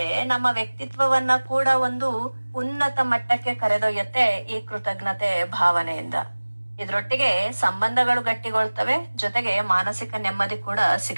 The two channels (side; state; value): both; inverted; correlation -1.00